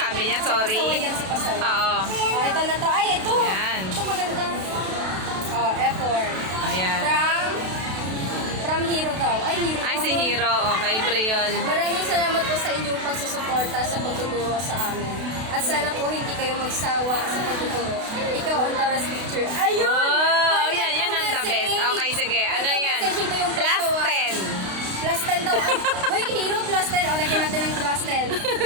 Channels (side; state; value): left; late; 32 ms